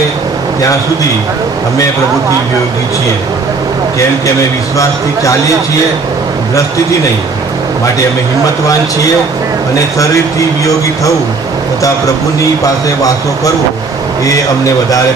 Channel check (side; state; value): left; quieter; 4.2 dB